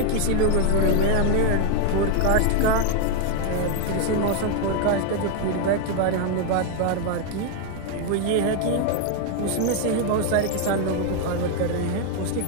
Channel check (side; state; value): both; different; correlation 0.00